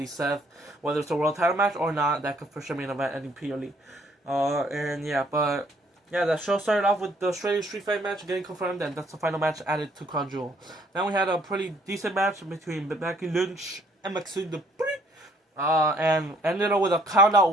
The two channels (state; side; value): normal; both; correlation 0.63